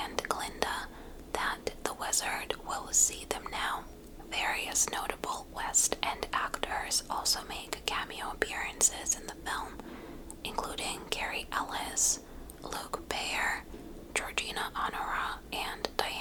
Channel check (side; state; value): both; identical; correlation 1.00